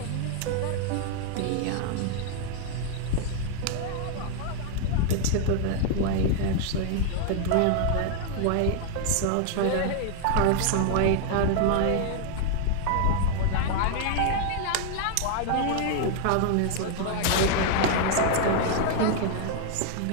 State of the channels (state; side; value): different; both; correlation 0.00